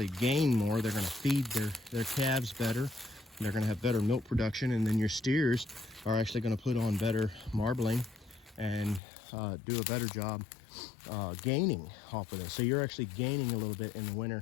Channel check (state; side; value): drops out; right; at 9.0 s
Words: gain more. They're going to feed their calves better. They're going to have better milk production, and then your steers are actually going to put on better marbling and do a better job gaining off of this. So you're actually gaining a little bit in the